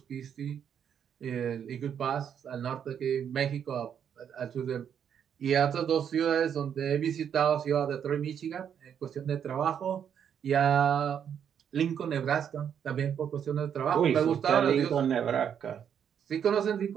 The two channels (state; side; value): quieter; left; 8.4 dB